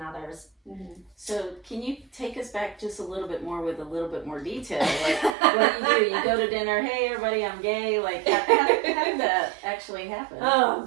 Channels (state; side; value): drops out; left; at 5.4 s